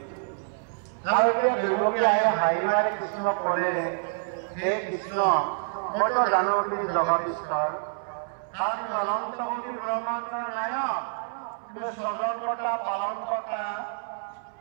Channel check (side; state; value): left; silent; 60 dB below the other